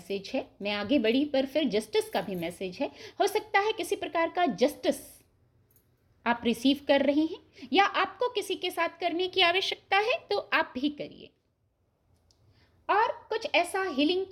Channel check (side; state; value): both; identical; correlation 1.00